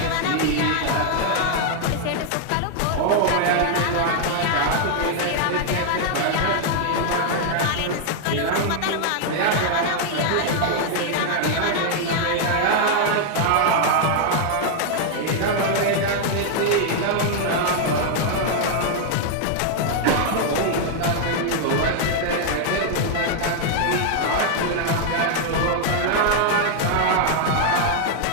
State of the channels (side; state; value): both; different; correlation 0.00